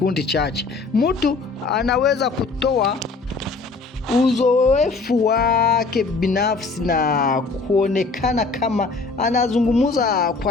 chache. Mtu anaweza kutoa uzoefu wake binafsi na kuonekana kama anazungumza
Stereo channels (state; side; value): quieter; right; 4.0 dB